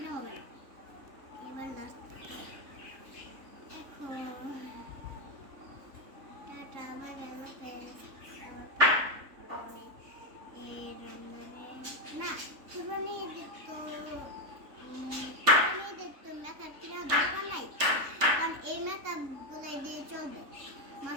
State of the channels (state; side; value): late; left; 3.6 ms